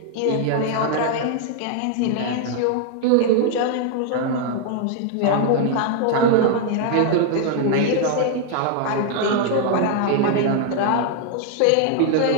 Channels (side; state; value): both; different; correlation 0.00